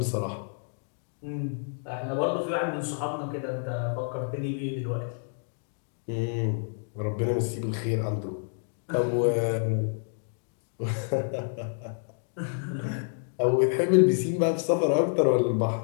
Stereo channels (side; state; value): right; silent; digital silence